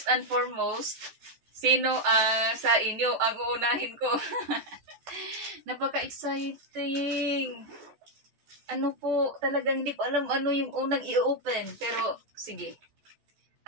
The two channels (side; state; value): left; late; 14 ms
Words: and foremost, sino sa inyo ang uunahin ko? Napaka-exciting! Ano po, talagang hindi ko alam ano yung unang i-open. Pero, sige.